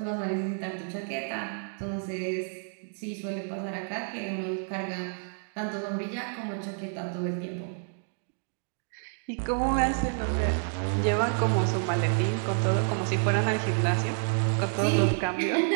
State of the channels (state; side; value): silent; left; 58 dB below the other